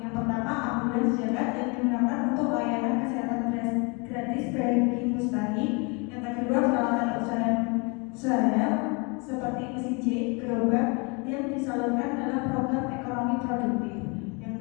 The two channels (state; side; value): quieter; right; 31.5 dB